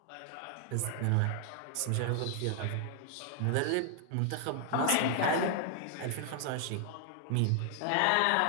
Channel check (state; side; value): different; both; correlation 0.00